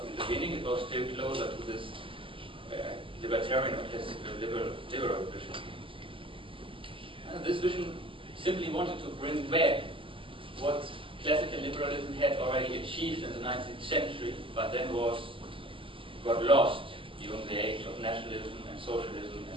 in the beginning, it was still closer to this libertarian or classical liberal vision. And this vision simply wanted to bring back what classical liberalism had already achieved in the 19th century, but then got lost during the age of nationalism and socialism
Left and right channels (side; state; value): left; late; 0.25 ms